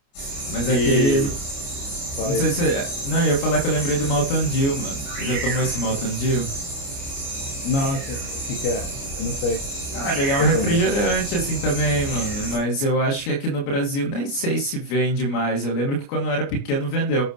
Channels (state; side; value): late; right; 29 ms